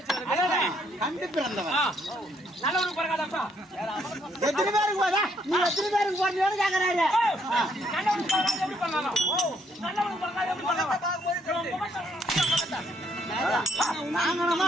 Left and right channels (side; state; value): both; normal; correlation 0.71